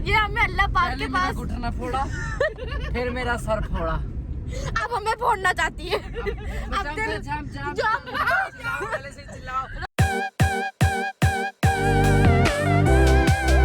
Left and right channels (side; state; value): both; identical; correlation 1.00